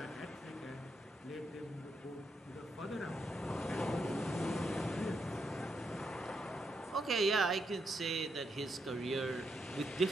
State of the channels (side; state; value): both; normal; correlation 0.80